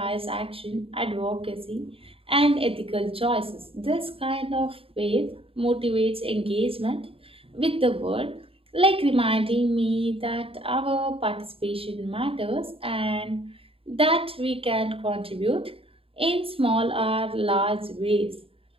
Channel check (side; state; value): left; late; 0.27 ms